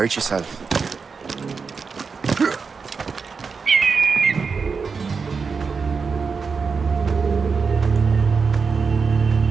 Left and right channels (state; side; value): quieter; left; 5.2 dB